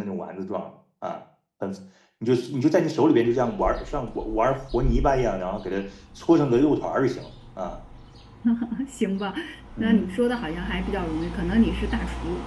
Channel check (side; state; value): both; identical; correlation 1.00